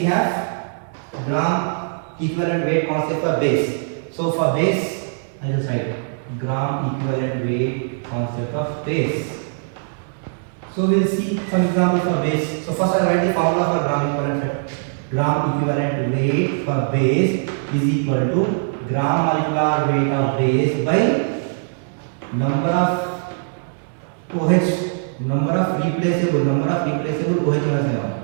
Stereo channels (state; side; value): silent; left; 65 dB below the other